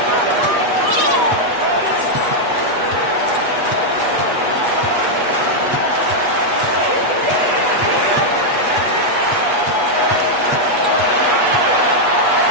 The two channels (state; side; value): late; left; 8.3 ms